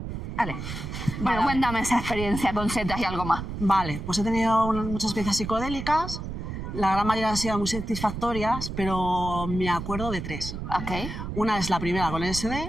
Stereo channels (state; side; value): noise; right; rumble, 7 dB below the sound